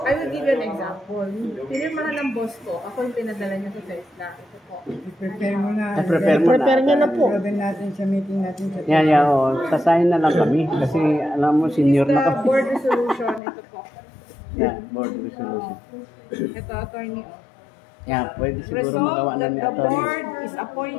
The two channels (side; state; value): right; drops out; at 13.4 s